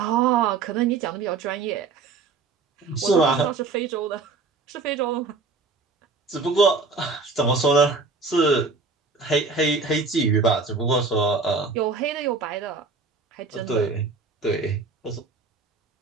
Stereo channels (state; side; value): quieter; left; 4.3 dB